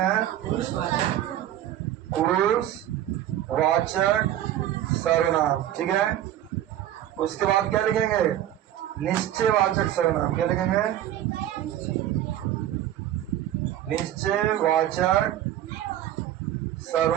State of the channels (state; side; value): quieter; left; 12.2 dB